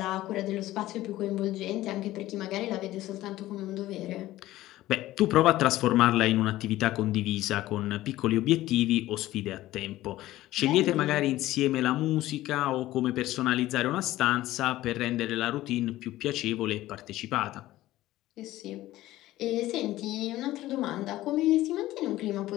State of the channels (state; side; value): quieter; right; 15.8 dB